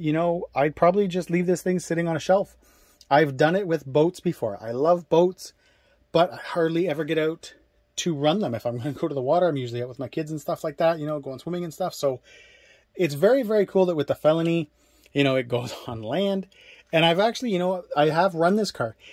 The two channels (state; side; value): identical; both; correlation 1.00